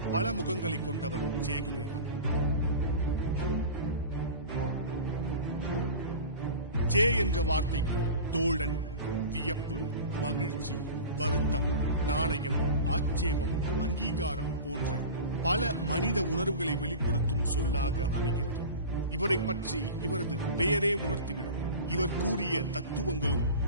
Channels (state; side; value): inverted; both; correlation -0.34